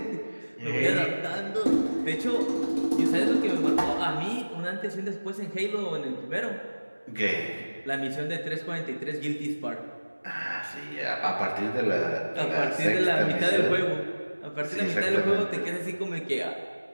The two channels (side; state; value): both; inverted; correlation -1.00